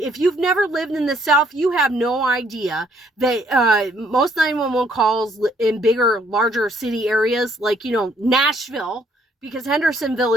you've never lived in the South, you have no idea that most 911 calls in bigger, larger city areas, like, Nashville, because Hendersonville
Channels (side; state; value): both; normal; correlation 0.66